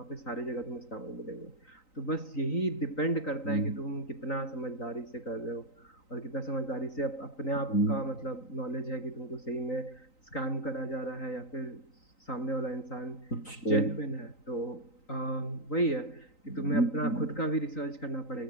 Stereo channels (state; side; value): late; right; 3.9 ms